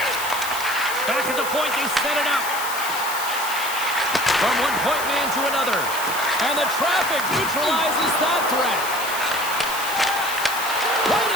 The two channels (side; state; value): left; noise; hiss, 7 dB below the sound